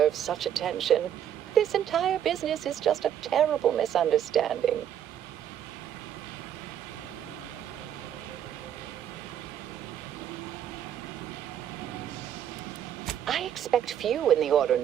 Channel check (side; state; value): left; quieter; 10.0 dB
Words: such attention. This entire business is just a terrible misunderstanding. I expect few in the Order